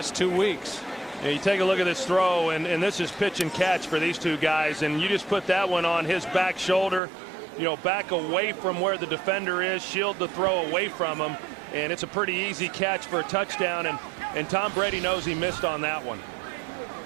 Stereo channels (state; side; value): drops out; left; at 7.0 s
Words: 2 weeks. Yeah, you take a look at this throw, and this is pitch and catch for these two guys, and you just put that one on his back shoulder, you know, back away from where the defender is, shield the throw away from him, and it's a pretty easy catch for a touchdown, and Tom Brady knows he missed on that one.